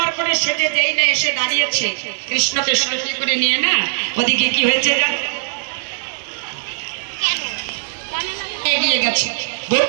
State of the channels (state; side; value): silent; left; digital silence